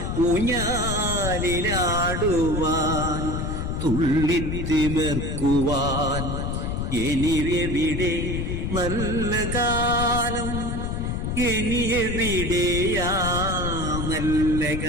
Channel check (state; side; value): noise; left; rumble, 2 dB below the sound